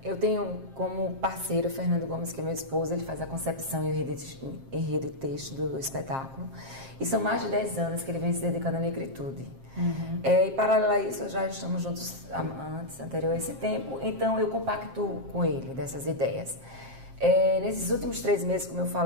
eu tenho como parceiro o Fernando Gomes, que é meu esposo. Ele faz a concepção e o enredo e texto do espetáculo. E são mais de 10 anos que ele vem se dedicando à negritude. E paralelo a isso, já estamos juntos anterior a esse tempo, então eu compactuo com ele dessas ideias. Nesses últimos 3 meses, como eu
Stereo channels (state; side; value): late; left; 7.5 ms